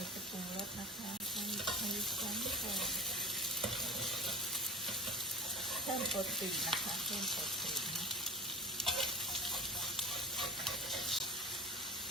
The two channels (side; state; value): both; normal; correlation 0.35